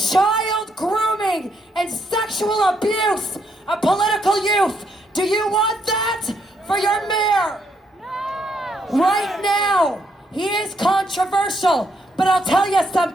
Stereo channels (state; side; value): normal; both; correlation 0.75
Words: grooming and sexual abuse of political youth. Do you want that for your mayor? No! Right now, he is controversial, but I'll tell you